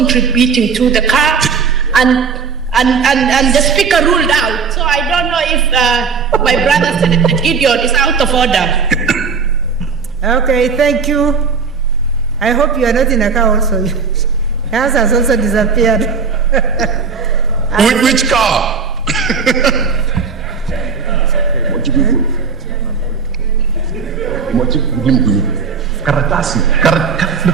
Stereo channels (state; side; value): quieter; left; 5.4 dB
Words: to the car, and the Speaker ruled out. So I don't know if my brother Senator Gideon is out of order. Okay, thank you. I hope you are not in a car also. Yours has also disappeared. Which car?